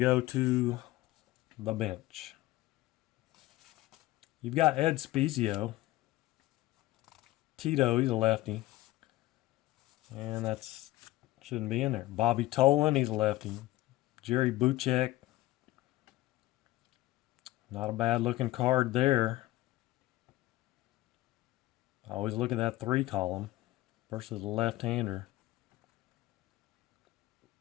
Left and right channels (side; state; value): right; quieter; 17.5 dB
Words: go to the bench. You've got Ed Spezio. Tito, he's a lefty. And that's shouldn't be in there. Bobby Tolan, he's a lefty. Jerry Buchek. Not a bad looking card there. I always look at that 3 column versus the left-hander.